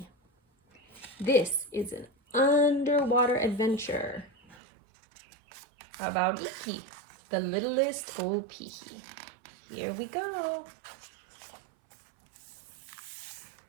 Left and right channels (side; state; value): left; drops out; at 4.5 s